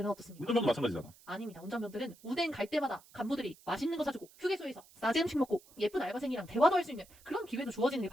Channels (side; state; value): right; noise; hiss, 25 dB below the sound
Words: 어떻습니까? 운전병도 마찬가지잖아. 아닙니다. 운전병들은 운행 갈 때마다 간부들이 맛있는 거 사주고 휴게소에서 싸지 음식 먹고 예쁜 알바생이랑 대화도 할 수 있는 그런 기회도 주어지는 게